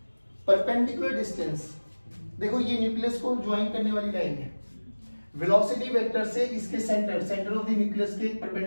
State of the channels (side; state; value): both; inverted; correlation -1.00